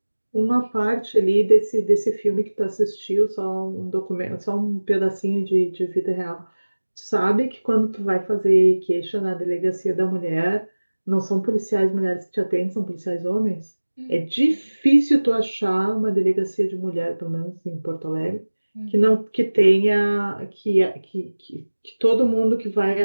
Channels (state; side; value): inverted; both; correlation -1.00